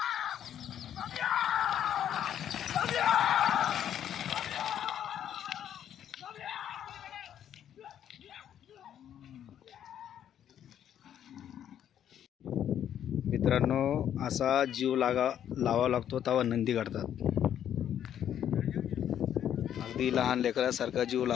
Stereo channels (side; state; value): right; quieter; 10.0 dB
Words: मित्रांनो, असा जीव लावा लागतो तेव्हा नंदी काढतात। अगदी लहान लेकरासारखा जीव